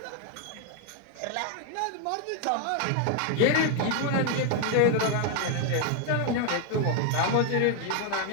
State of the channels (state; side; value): different; both; correlation 0.00